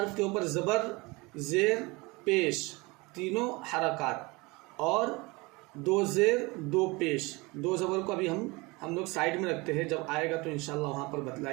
کے اوپر زبر زیر پیش تینوں حرکات، اور دو زیر دو پیش، دو زبر کو ابھی ہم لوگ سائیڈ میں رکھتے ہیں، جب آئے گا تو انشاءاللہ وہاں پر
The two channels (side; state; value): left; quieter; 24.8 dB